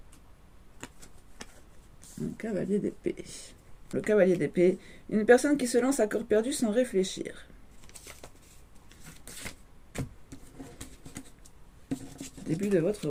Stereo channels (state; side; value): identical; both; correlation 1.00